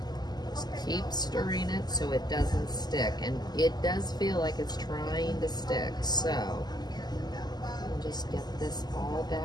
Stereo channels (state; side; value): late; right; 0.20 ms